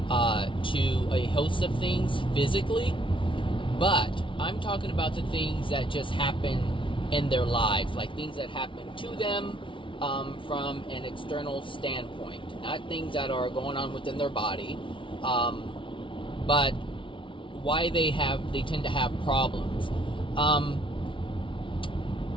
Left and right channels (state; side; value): late; right; 0.25 ms